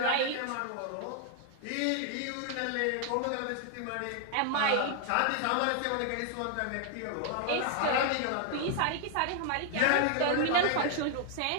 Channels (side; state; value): both; different; correlation 0.00